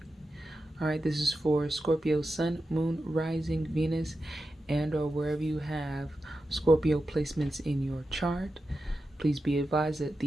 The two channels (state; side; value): normal; both; correlation 0.91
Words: All right, this is for Scorpio Sun, Moon, Rising, Venus, and or wherever you have Scorpio placements in your chart. Please be advised that